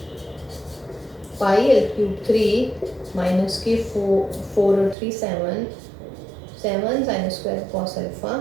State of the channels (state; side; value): drops out; left; at 5.0 s